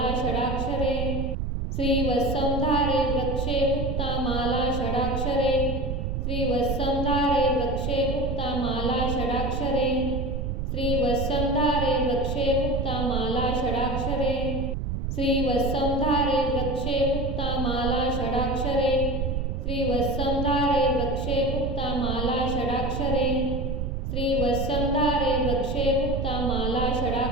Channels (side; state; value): right; noise; rumble, 2 dB below the sound